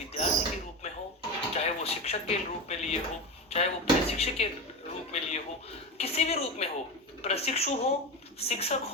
के रूप में हो, चाहे वो शिक्षक के रूप में लिए हो, चाहे वो प्रशिक्षक के रूप में लिए हो, किसी भी रूप में हो, प्रशिक्षु हो, शिक्षक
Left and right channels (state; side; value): normal; both; correlation 0.21